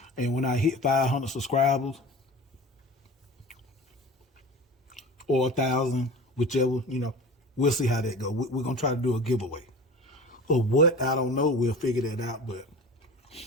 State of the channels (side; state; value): both; normal; correlation 0.35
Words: And when I hit 500 subscribers or 1,000, whichever, we'll see how that goes. We're going to try to do a giveaway. Or what? I don't know. We'll figure that out. But,